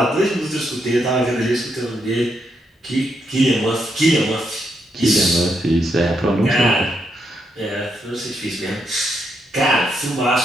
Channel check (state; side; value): normal; both; correlation 0.79